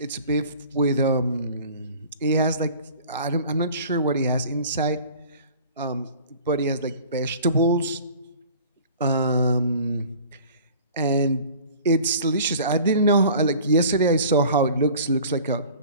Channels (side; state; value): both; inverted; correlation -0.45